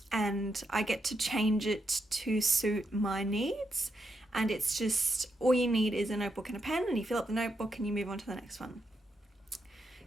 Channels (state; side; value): normal; both; correlation 0.82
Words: and I get to change it to suit my needs. And it's just, all you need is a notebook and a pen, and you fill up the notebook and you move on to the next one.